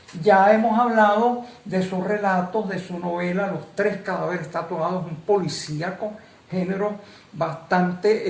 Ya hemos hablado de sus relatos, de su novela Los Tres Cadáveres Tatuados, un policíaco, género bastante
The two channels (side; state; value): both; identical; correlation 1.00